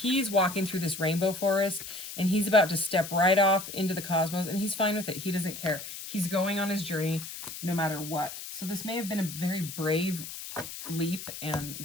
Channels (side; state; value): left; noise; hiss, 10 dB below the sound